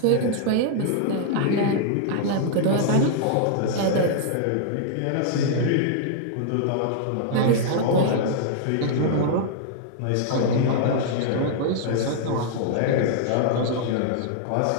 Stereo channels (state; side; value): different; both; correlation -0.01